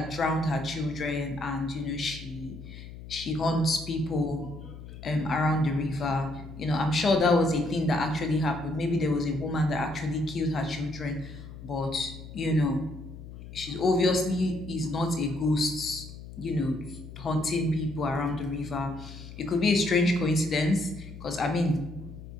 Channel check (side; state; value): left; noise; hum, 13 dB below the sound